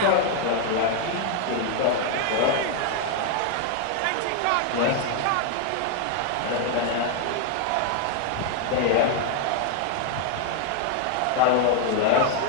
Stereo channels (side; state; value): both; different; correlation 0.00